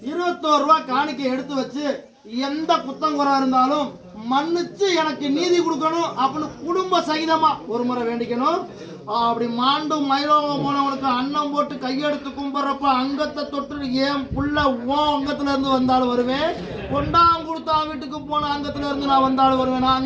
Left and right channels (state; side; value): identical; both; correlation 1.00